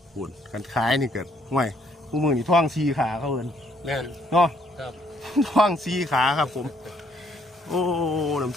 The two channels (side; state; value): both; normal; correlation 0.67